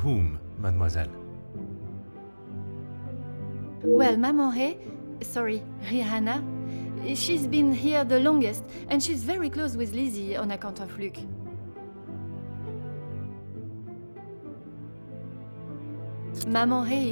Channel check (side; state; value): both; inverted; correlation -1.00